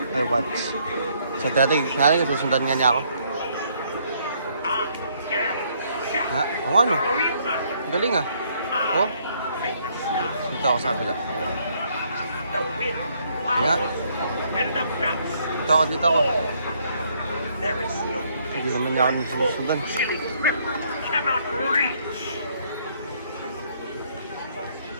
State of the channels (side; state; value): both; inverted; correlation -0.68